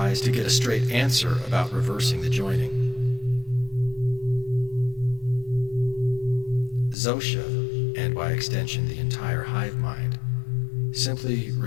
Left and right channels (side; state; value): right; drops out; at 7.0 s